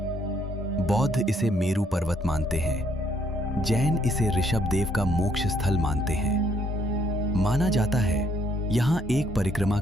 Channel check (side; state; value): both; normal; correlation 0.68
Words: बौद्ध इसे मेरु पर्वत मानते हैं, जैन इसे ऋषभ देव का मोक्ष स्थल मानते हैं। माना जाता है यहां एक परिक्रमा